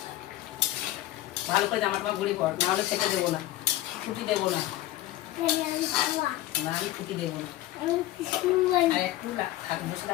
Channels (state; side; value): quieter; right; 15.4 dB